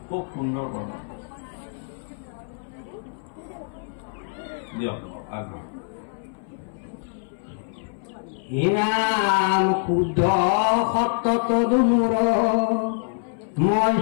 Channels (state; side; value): silent; right; 62 dB below the other